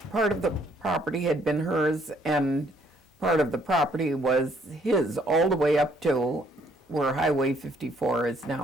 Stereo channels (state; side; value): normal; both; correlation 0.66